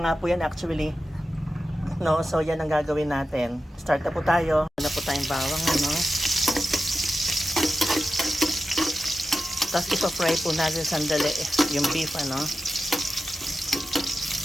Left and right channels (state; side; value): normal; both; correlation 0.92